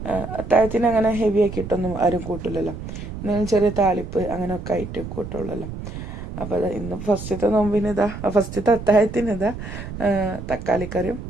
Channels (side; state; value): right; noise; rumble, 9 dB below the sound